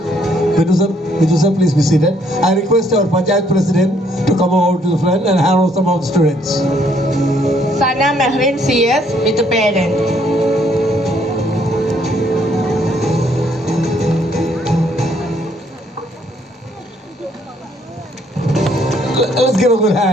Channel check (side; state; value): both; normal; correlation 0.67